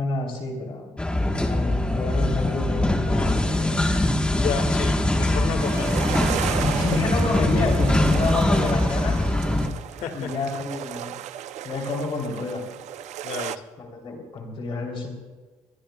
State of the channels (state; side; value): normal; both; correlation 0.82